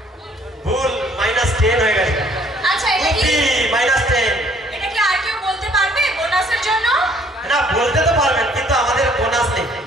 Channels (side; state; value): both; normal; correlation 0.60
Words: ভুল -10 হয়ে গেছে আচ্ছা এটা কি -10 এটা কি আর কেউ বলতে পারবে বোনাসের জন্য না বলতে তো পারবেন কিন্তু আমাদের বোনাস নেই